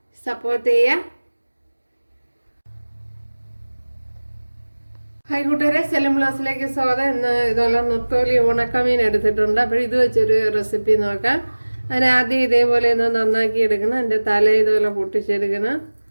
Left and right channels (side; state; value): both; inverted; correlation -1.00